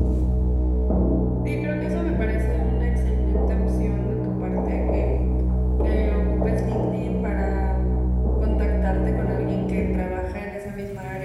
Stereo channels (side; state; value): both; identical; correlation 1.00